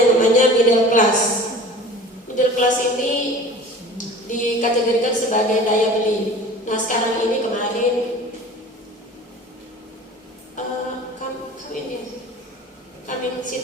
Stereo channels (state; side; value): normal; both; correlation 0.41